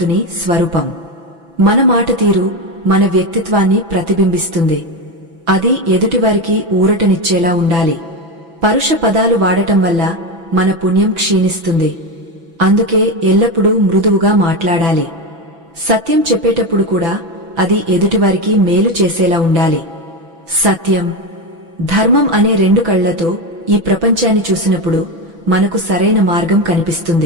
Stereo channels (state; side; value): late; left; 6.0 ms